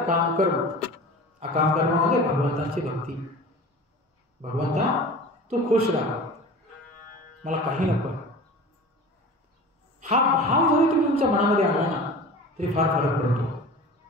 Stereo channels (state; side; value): normal; both; correlation 0.37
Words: कर्म. अकाम कर्म म्हणजे भगवंताची भक्ती. भगवंता तू खुश राहा, मला काही नको. हा भाव जरी तुम्ही तुमच्या मनामध्ये आला ना तरी फार फरक पडतो.